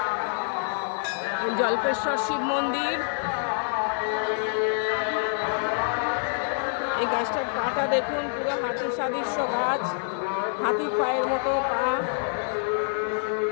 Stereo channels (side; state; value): right; silent; digital silence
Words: জল্পেশ্বর শিব মন্দির। এই গাছটার পাটা দেখুন, পুরো হাতির সাদৃশ্য গাছ, হাতির পায়ের মতো পা